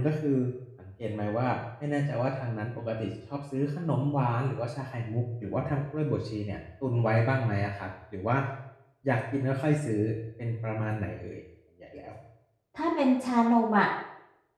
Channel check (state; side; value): identical; both; correlation 1.00